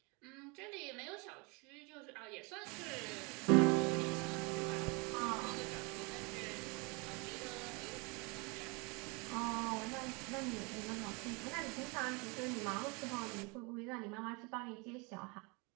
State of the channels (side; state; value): left; quieter; 29.8 dB